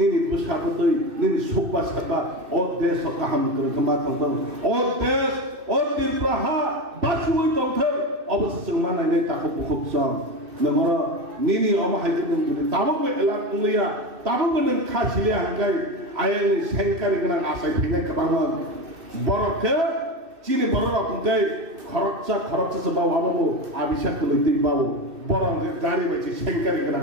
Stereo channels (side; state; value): left; late; 2.6 ms